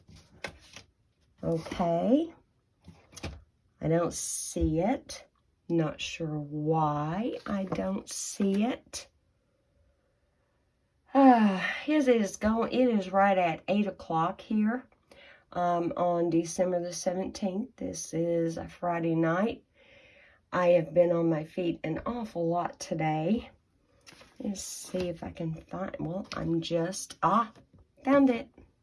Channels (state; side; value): identical; both; correlation 1.00